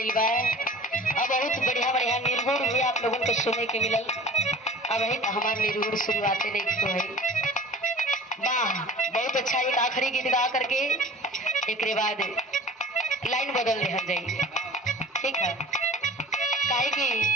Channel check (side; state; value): both; normal; correlation 0.43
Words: बा। अब बहुत बढ़िया बढ़िया निर्गुण भी आप लोगों को सुनने के मिलल। अब ही हमारे निर्गुण शुरुआते नहीं तो है। वाह बहुत अच्छा। एक आखिरी गीत गा करके एक बाद लाइन बदल दे जाइए, ठीक है? काहे कि